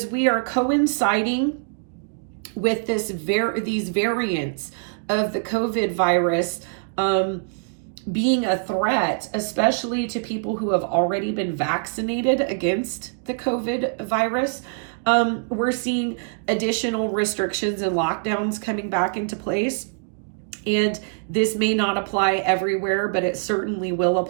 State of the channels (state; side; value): silent; left; digital silence